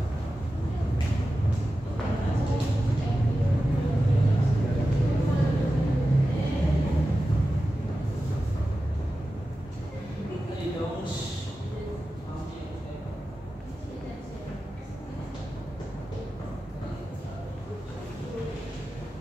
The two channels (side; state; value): both; normal; correlation 0.93